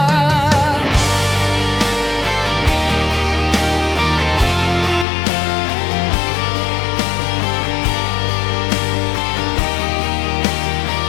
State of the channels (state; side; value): drops out; right; at 5.1 s